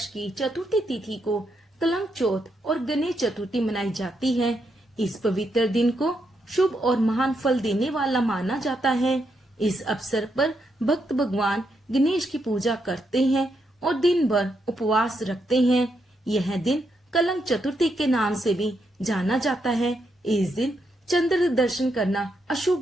की चतुर्थी तिथि को कलंक चौथ और गणेश चतुर्थी मनाई जाती है। इस पवित्र दिन को शुभ और महान फल देने वाला माना जाता है। इस अवसर पर भक्त भगवान गणेश की पूजा करते हैं और दिन भर उपवास रखते हैं। यह दिन कलंक चतुर्थी के नाम से भी जाना जाता है। इस दिन चंद्र दर्शन करना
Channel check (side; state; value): both; normal; correlation 0.80